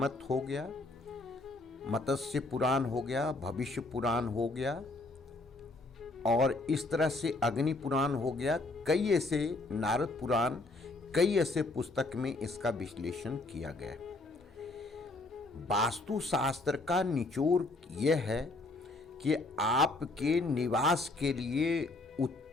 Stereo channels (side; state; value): right; quieter; 3.0 dB